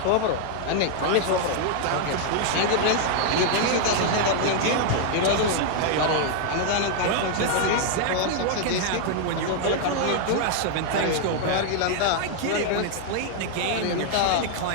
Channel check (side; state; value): both; different; correlation 0.00